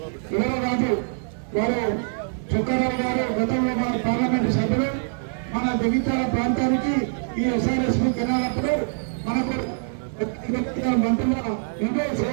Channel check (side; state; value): left; silent; digital silence